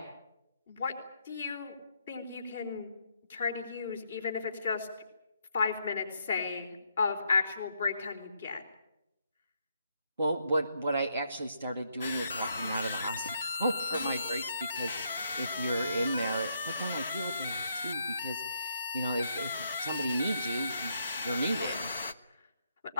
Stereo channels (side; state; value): both; inverted; correlation -0.76